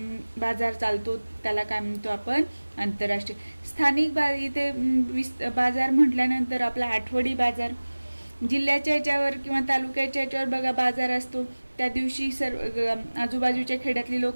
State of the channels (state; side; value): inverted; both; correlation -1.00